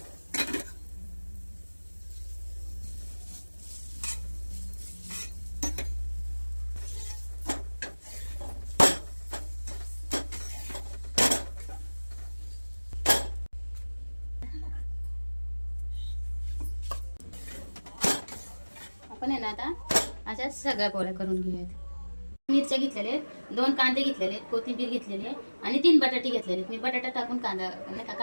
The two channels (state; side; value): inverted; both; correlation -1.00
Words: आपण आहे ना आता अशा सगळ्या पोळ्या करून घेऊयात. मिरच्या घेतलेल्या आहेत, 2 कांदे घेतलेले आहेत, कोथिंबीर घेतलेली आहे आणि 3 बटाटे घेतलेले आहेत. मी बटाटा टाकून कांदा नाही का